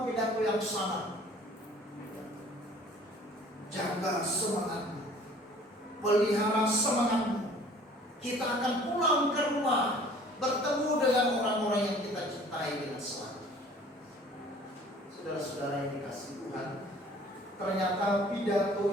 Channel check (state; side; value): normal; both; correlation 0.51